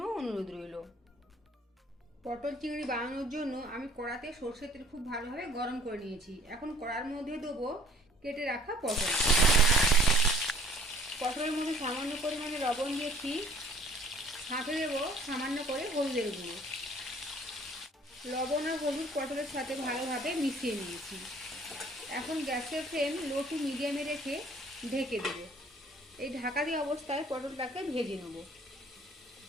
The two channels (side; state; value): both; normal; correlation 0.56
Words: অনুরোধ রইল। পটল চিংড়ি বানানোর জন্য আমি কড়াতে সরষের তেল খুব ভালোভাবে গরম করে নিয়েছি। এখন কড়ার মধ্যে দেবো কেটে রাখা পটল। পটলের মধ্যে সামান্য পরিমাণে লবণ দিয়েছি, সাথে দেবো সামান্য করে হলুদের গুঁড়ো। লবণ আর হলুদ পটলের সাথে ভালোভাবে মিশিয়ে নিয়েছি। এখন গ্যাসের ফ্লেম লো টু মিডিয়ামে রেখে ঢেকে দেব। এই ঢাকা দিয়ে অবস্থায় পটলটাকে ভেজে নেব।